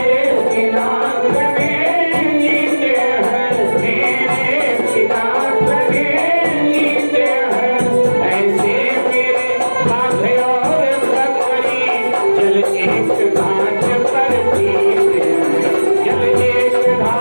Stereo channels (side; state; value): both; inverted; correlation -1.00